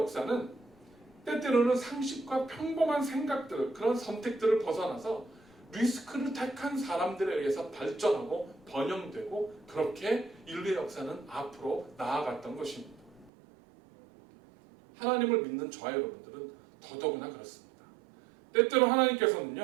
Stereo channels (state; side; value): drops out; left; at 13.3 s